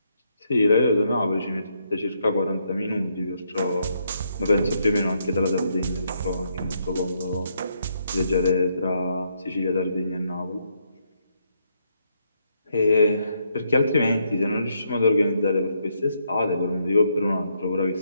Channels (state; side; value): inverted; both; correlation -0.76